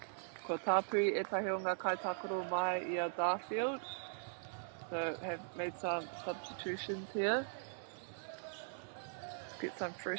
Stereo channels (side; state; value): left; silent; 51 dB below the other